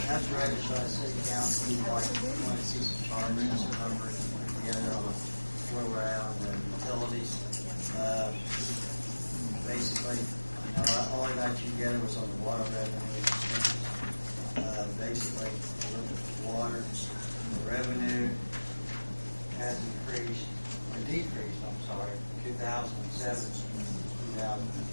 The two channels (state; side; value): inverted; both; correlation -1.00